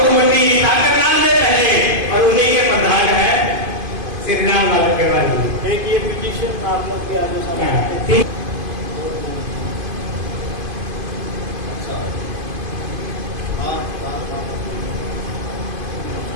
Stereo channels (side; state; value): left; late; 2.5 ms